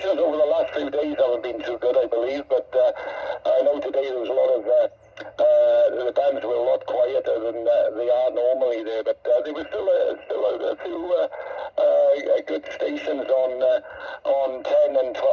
over the last few days haven't been too good, I believe, but I know today there was a lot of the bands were a lot quieter than they are normally there, but there was still a few good stations on 10 and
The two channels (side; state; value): both; identical; correlation 1.00